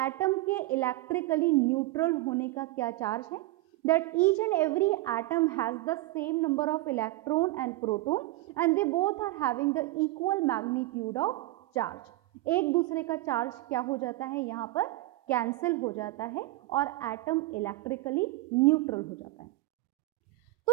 के इलेक्ट्रिकली न्यूट्रल होने का क्या चार्ज है? That each and every atom has the same number of electron and proton and they both are having the equal magnitude of charge. एक दूसरे का चार्ज क्या हो जाता है? यहाँ पर कैंसिल हो जाता है और एटम इलेक्ट्रिकली न्यूट्रल हो जाता है.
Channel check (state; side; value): quieter; left; 18.6 dB